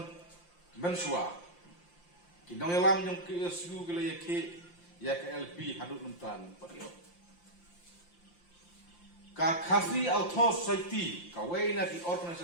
mensua kinong ilam yung KSU gila ya ka LP hadut mentan patyo ka khasi auto society ka way na di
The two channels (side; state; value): right; late; 5.8 ms